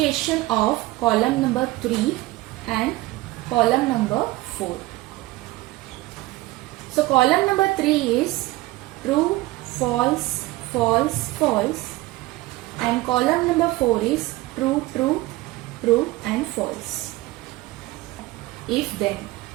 of column number 3 and column number 4. So column number 3 is true, false, false, false, and column number 4 is true, true, true and false. If then.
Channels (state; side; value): quieter; left; 19.3 dB